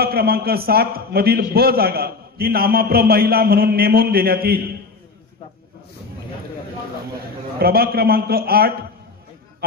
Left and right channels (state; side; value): quieter; right; 4.1 dB